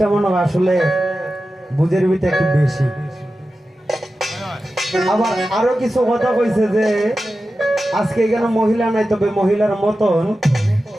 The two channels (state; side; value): normal; both; correlation 0.93